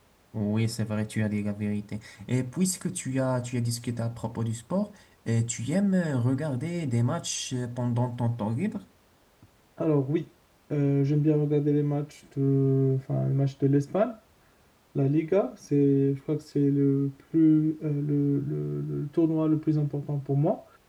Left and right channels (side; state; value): both; identical; correlation 1.00